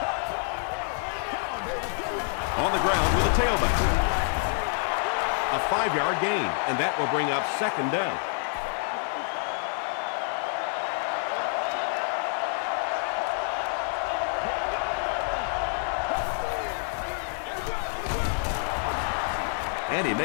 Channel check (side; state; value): right; silent; 55 dB below the other